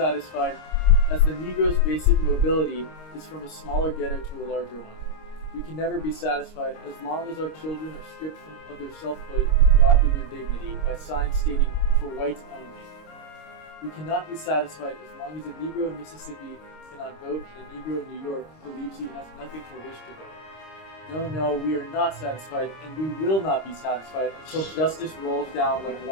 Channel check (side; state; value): right; late; 26 ms